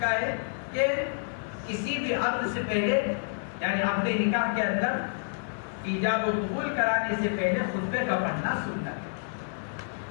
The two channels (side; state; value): right; silent; digital silence